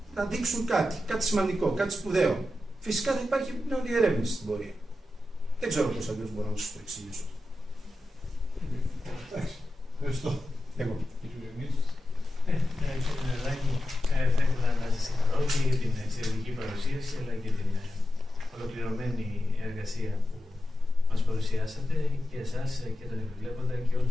να δείξουν κάτι σημαντικό, κάτι σπουδαίο. Φυσικά θα υπάρχει επιπλέον διερεύνηση στην πορεία. Δεν ξέρω πώς αλλιώς μπορώ να σας το εξηγήσω. Εντάξει. Ευχαριστώ. Εγώ. Κύριε Νεδάκη, θα ήθελα να σας συγχαρώ και για την εξαιρετική παρουσίαση, αλλά και την ολοκληρωμένη εργασία που μας παρουσιάσατε, και εσάς και τον επιβλέποντα και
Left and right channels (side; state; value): both; normal; correlation 0.90